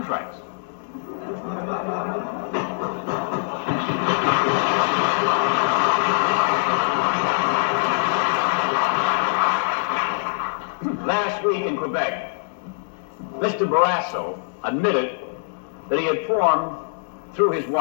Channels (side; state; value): right; silent; digital silence